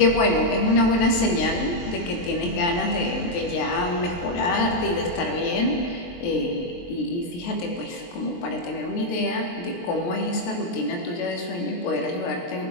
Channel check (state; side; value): late; right; 23 ms